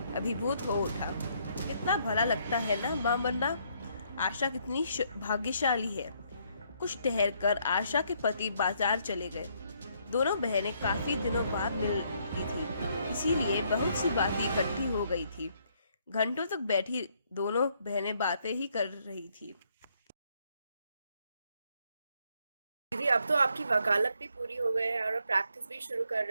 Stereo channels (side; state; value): both; inverted; correlation -0.71